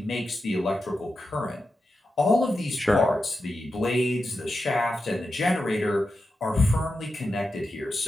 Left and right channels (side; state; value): both; normal; correlation 0.89